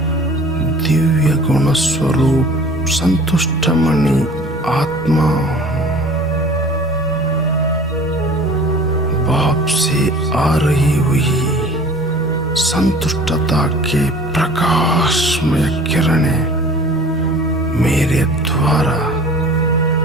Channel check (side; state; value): both; normal; correlation 0.45